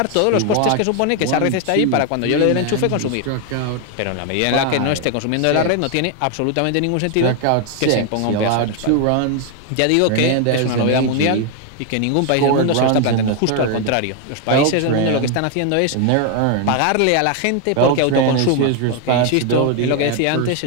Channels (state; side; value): different; both; correlation 0.01